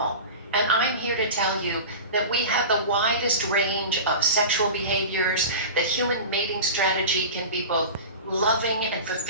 And I'm here to tell you that we have the widest range of sexual behaviors, that human mating strategy can be both loving and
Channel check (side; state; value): both; inverted; correlation -0.31